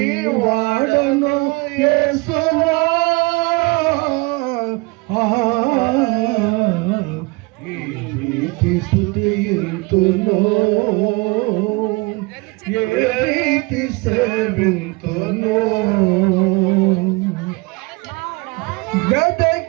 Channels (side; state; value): left; quieter; 26.1 dB